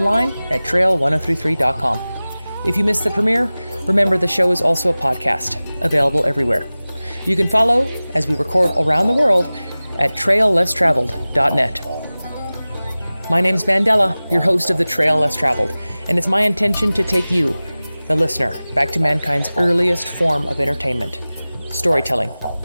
at trail1033.com. If you missed the premiere, remember the show is also a podcast, available everywhere. You can follow as we record around the world at traillesstraveled.net. My name's Mandela, your host of the Trail Less Traveled, and it's my intention to take you, the listener, back to mankind's earliest form of entertainment, storytelling.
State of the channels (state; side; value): inverted; both; correlation -0.98